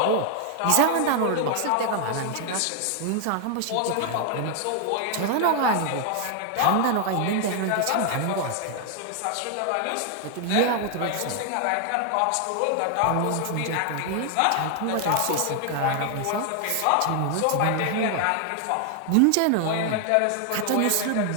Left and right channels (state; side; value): different; both; correlation 0.00